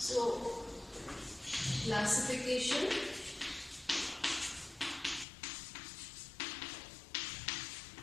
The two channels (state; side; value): drops out; right; at 5.2 s